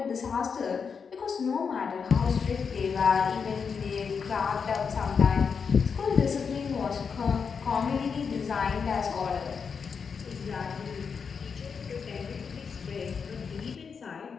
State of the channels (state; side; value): quieter; right; 6.0 dB